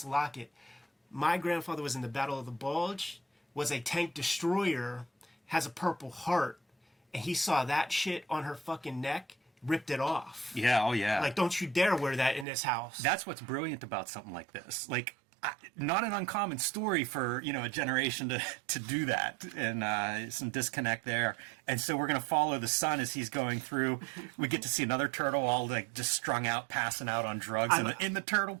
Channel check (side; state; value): left; drops out; at 12.5 s